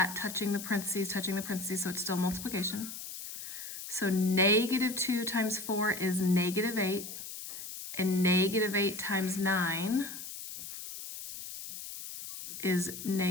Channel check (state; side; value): noise; left; hiss, 9 dB below the sound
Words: touching the parentheses, so it's still multiplication. So negative 2 times 4 is negative 8, and negative 8 times 9 is